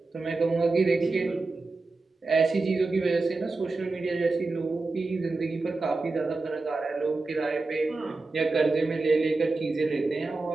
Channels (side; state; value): left; quieter; 3.6 dB